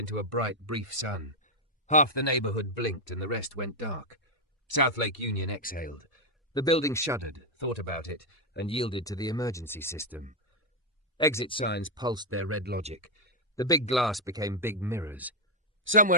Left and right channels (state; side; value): normal; both; correlation 0.00